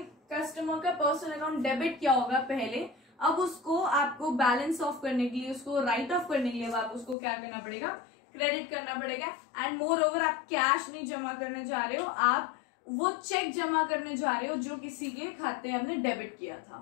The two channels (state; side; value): drops out; right; at 7.2 s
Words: कस्टमर का पर्सनल अकाउंट डेबिट किया होगा पहले, अब उसको आपको बैलेंस ऑफ करने के लिए, उसको राइट ऑफ करने के लिए आप उसको क्या करना पड़ेगा, क्रेडिट करना पड़ेगा। एंड मोर ओवर आप कैश नहीं जमा करने जा रहे हो, आप वो चेक जमा करने जा रहे हो जो किसी के खाते हमने डेबिट किया था,